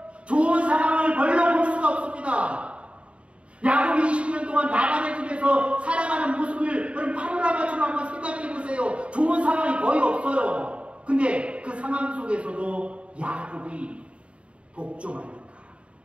좋은 상황을 별로 볼 수가 없습니다. 야곱이 20년 동안 라반의 집에서 살아가는 모습을 여러분 파노라마처럼 한번 생각해 보세요. 좋은 상황이 거의 없어요. 근데 그 상황 속에서도 야곱이 복종하니까,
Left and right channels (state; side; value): late; left; 0.061 ms